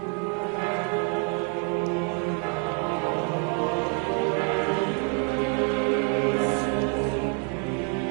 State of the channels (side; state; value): left; quieter; 39.8 dB